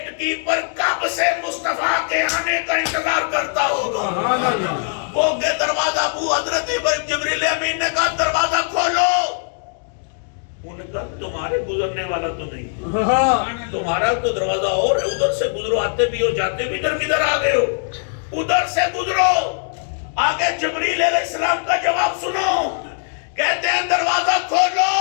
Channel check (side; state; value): right; silent; digital silence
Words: کیپر کب سے مصطفیٰ کے آنے کا انتظار کرتا ہوگا۔ سبحان اللہ وہ کہ دروازہ ابو حضرت جبریل امین نے کہا دروازہ کھولو، انہوں نے کہا تمہارے گزرنے والا تو نہیں، ہاں تمہارا تو دروازہ اور ہے، ادھر سے گزرو، آتے بھی ہو جاتے بھی، ادھر کدھر آ گئے ہو، ادھر سے گزرو۔ آگے جبریل علیہ السلام کا جواب سنو، کہتے ہیں دروازہ کھولو،